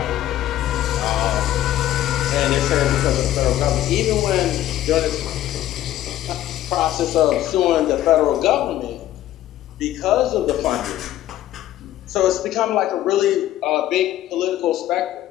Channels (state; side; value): quieter; right; 13.4 dB